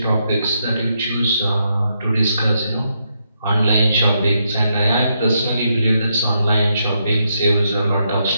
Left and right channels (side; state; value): both; inverted; correlation -0.80